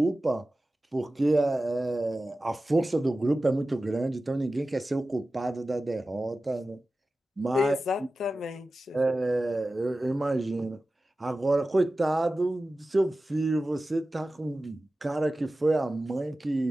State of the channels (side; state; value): both; normal; correlation 0.95